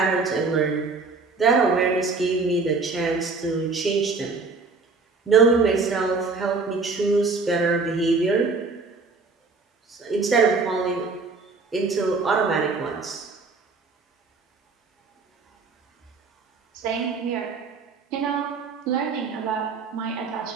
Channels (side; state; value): left; quieter; 4.2 dB